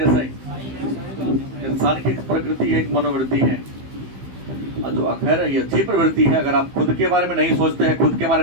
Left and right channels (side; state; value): left; late; 15 ms